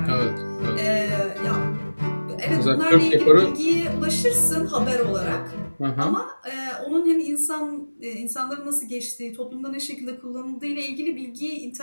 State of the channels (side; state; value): both; inverted; correlation -1.00